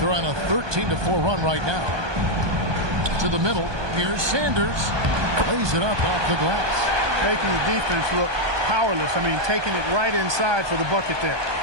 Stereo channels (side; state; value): left; late; 1.2 ms